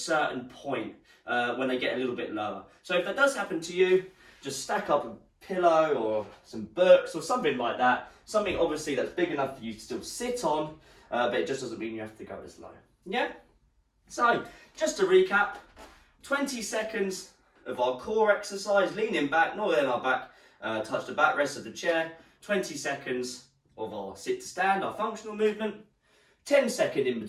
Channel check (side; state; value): both; identical; correlation 1.00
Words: point when they get a little bit lower. So if that does happen to you, just stack up a pillow or some books or something like that, something obviously that's big enough for you to still sit on, but it just doesn't mean you have to go as low. Yeah? So, just to recap, 20 seconds of our core exercise, leaning back, not letting our back touch the backrest of the chair. 20 seconds of our sit to stand, our functional movement. 10 seconds in